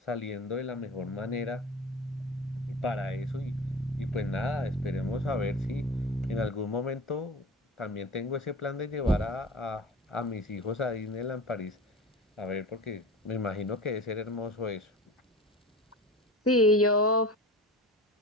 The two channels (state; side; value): normal; both; correlation 0.34